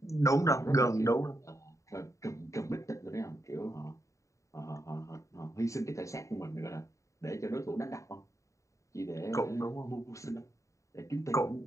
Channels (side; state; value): right; late; 0.15 ms